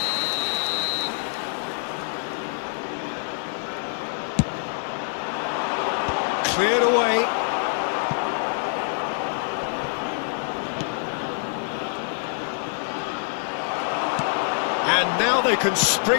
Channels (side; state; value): right; silent; 62 dB below the other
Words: Cleared away. And now they can